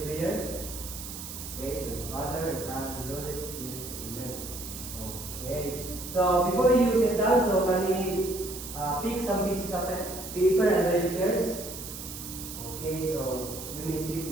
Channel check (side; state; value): right; noise; hiss, 10 dB below the sound